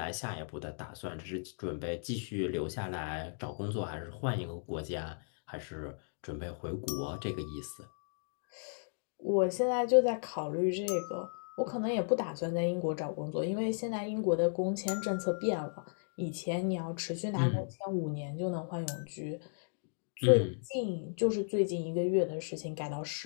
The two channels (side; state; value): right; silent; digital silence